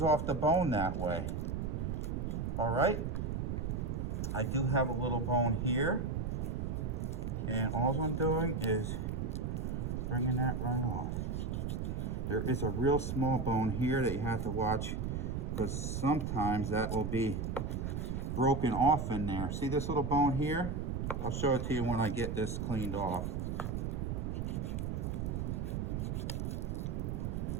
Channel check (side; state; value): right; noise; rumble, 2 dB below the sound